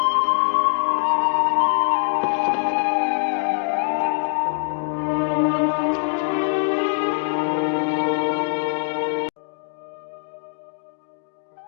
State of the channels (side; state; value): right; silent; digital silence